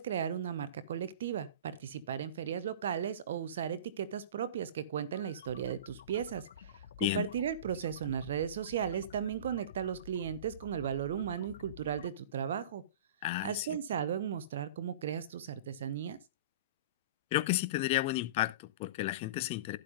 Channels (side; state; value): both; inverted; correlation -0.34